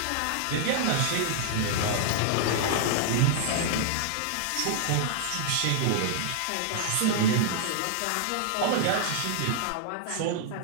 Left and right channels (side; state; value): both; different; correlation -0.01